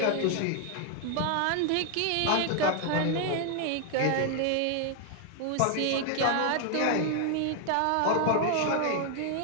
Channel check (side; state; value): both; different; correlation 0.00